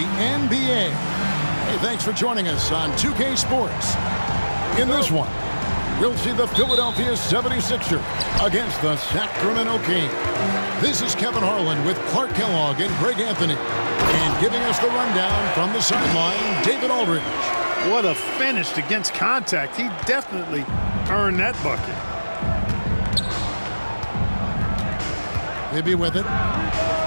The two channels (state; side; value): inverted; both; correlation -1.00